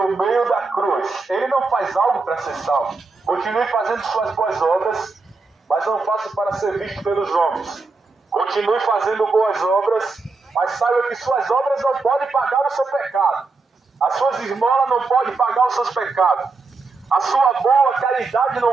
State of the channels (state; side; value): quieter; left; 4.0 dB